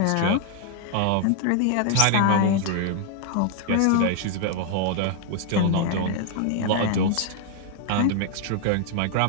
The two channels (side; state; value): both; different; correlation 0.00